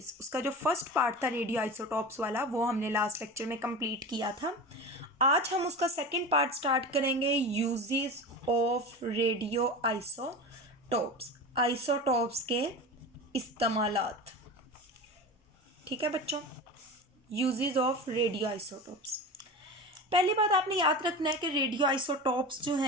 उसका जो फर्स्ट पार्ट था रेडियो आइसोटॉप्स वाला वो हमने लास्ट लेक्चर में कंप्लीट किया था। आज हम उसका सेकेंड पार्ट स्टार्ट करेंगे, uses of radio isotopes, isotopes के इस्तेमालात। ठीक है बच्चों, यूजेस ऑफ रेडियो आइसोटॉप्स। पहली बात आपने याद रखना है कि रेडियो आइसोटॉप्स जो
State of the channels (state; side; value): normal; both; correlation 0.29